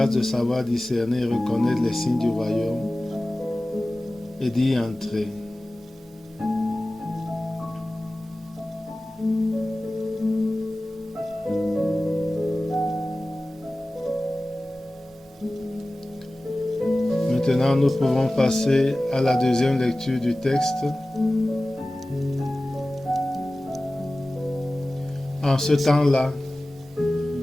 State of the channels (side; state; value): both; normal; correlation 0.97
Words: de savoir discerner et reconnaître les signes du royaume et d'y entrer. Maintenant, nous pouvons passer à la deuxième lecture du texte. En ce temps-là,